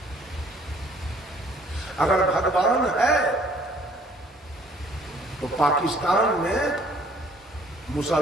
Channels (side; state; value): both; normal; correlation 0.58